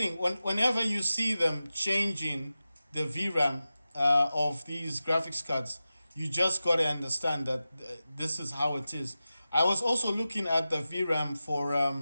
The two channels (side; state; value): both; inverted; correlation -0.94